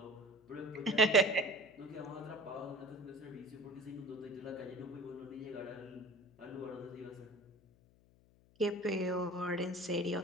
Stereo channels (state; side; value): noise; left; hum, 28 dB below the sound